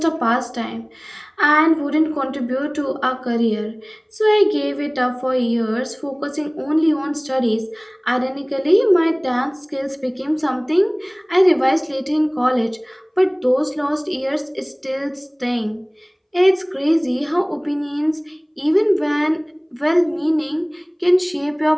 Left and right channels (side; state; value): both; identical; correlation 1.00